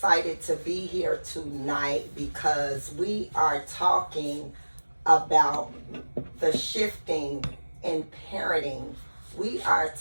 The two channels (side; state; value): both; inverted; correlation -1.00